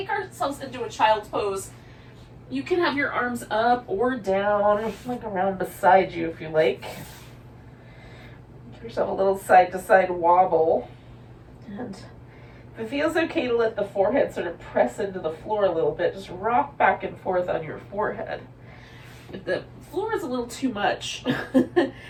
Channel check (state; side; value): identical; both; correlation 1.00